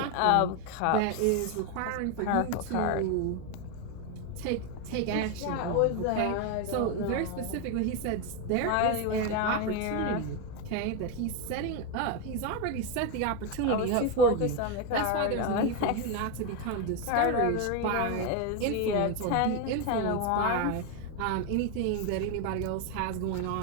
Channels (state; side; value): different; both; correlation 0.02